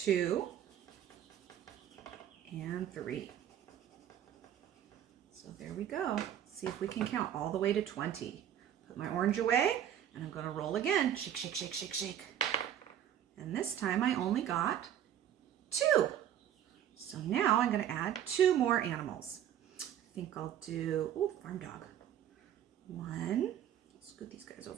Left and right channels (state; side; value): quieter; left; 10.4 dB